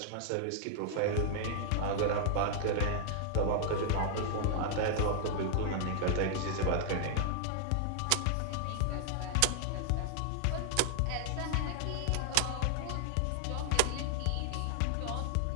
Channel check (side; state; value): both; different; correlation -0.01